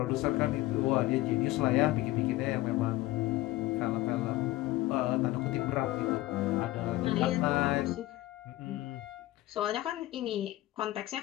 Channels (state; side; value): quieter; right; 17.3 dB